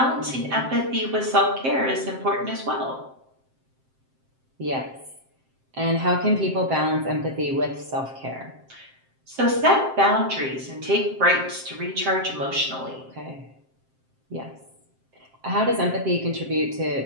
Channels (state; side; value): late; left; 7.6 ms